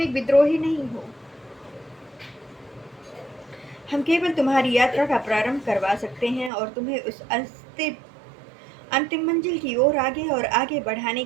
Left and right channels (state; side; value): drops out; left; at 6.5 s